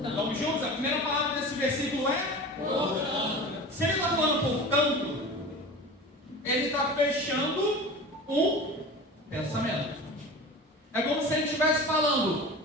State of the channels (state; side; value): normal; both; correlation 0.34